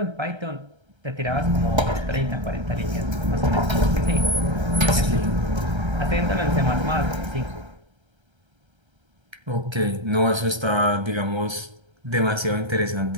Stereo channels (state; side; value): late; left; 1.3 ms